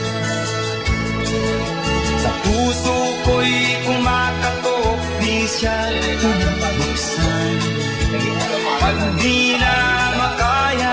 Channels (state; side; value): identical; both; correlation 1.00